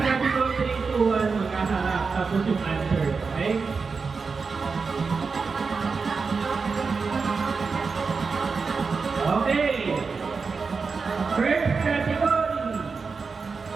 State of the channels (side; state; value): left; quieter; 4.8 dB